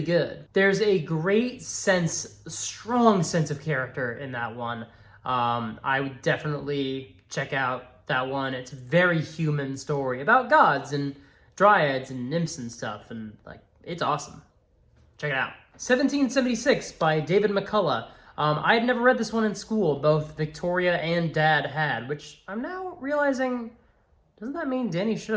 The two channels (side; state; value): both; identical; correlation 1.00